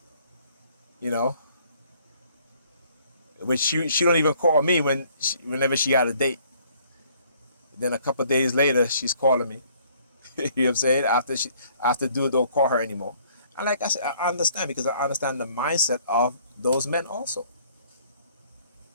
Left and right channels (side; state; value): both; inverted; correlation -0.61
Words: you know. Which she don't even call me whenever she got a date. Then a couple of days later, she's calling me. You know what I'm saying? After dude don't call her anymore. And like I said, I understand because I understand the mindset of those men also.